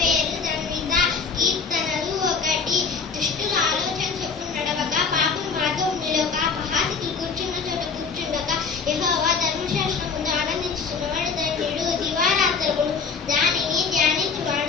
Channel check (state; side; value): quieter; right; 5.4 dB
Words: జన్విత. కీర్తనలు 1. దుష్టుల ఆలోచన చొప్పున నడవక, పాపం మార్గం నిలవక, అపహాసకులు కూర్చున్న చోట కూర్చుండక, యెహోవా ధర్మశాస్త్రం ముందు ఆనందించుచున్నవాడు ధన్యుడు. దివారాత్రములు దానిని